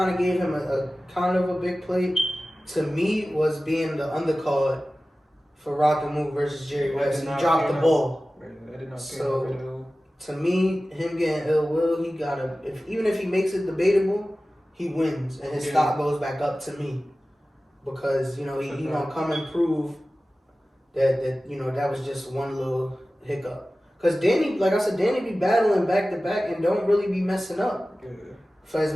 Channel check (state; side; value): normal; both; correlation 0.96